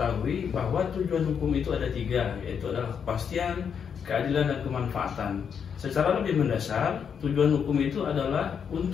bahwa tujuan hukum itu ada tiga, yaitu adalah kepastian, keadilan, dan kemanfaatan. Secara lebih mendasar, tujuan hukum itu adalah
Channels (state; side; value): quieter; right; 7.2 dB